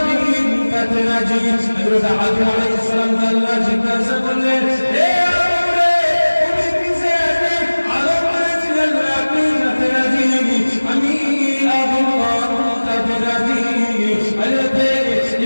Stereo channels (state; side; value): inverted; both; correlation -1.00